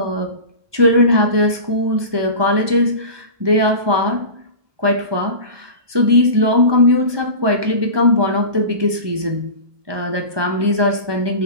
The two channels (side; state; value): left; late; 1.2 ms